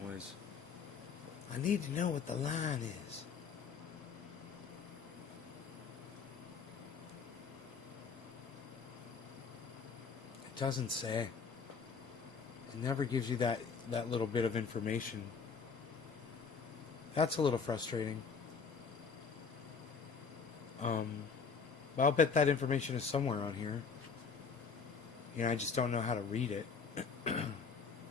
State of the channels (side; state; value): right; quieter; 5.5 dB